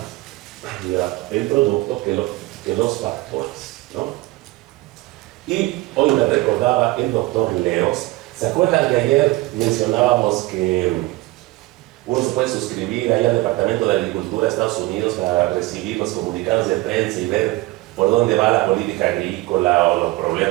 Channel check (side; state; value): left; quieter; 20.0 dB